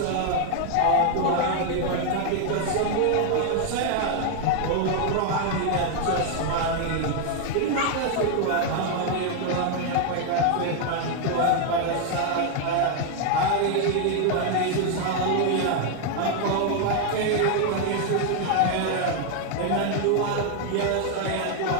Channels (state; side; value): different; both; correlation 0.00